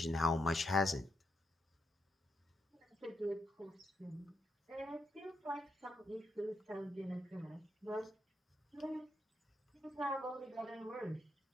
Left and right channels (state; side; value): normal; both; correlation 0.81